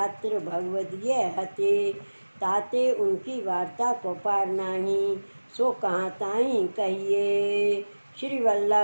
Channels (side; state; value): both; inverted; correlation -1.00